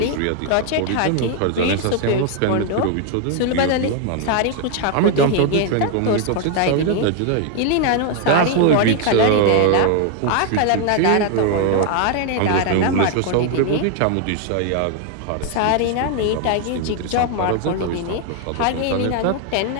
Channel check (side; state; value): both; different; correlation 0.00